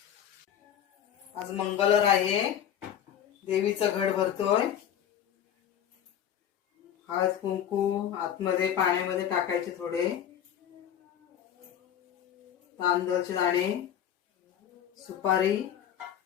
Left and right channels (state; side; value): quieter; right; 9.7 dB